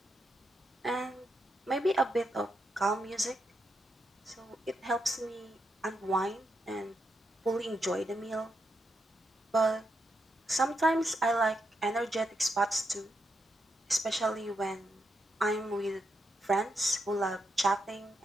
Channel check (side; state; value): both; normal; correlation 0.82